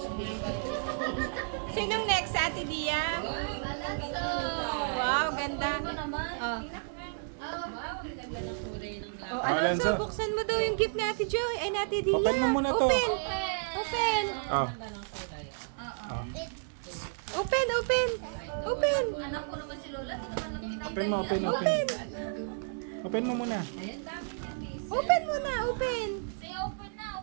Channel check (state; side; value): silent; left; digital silence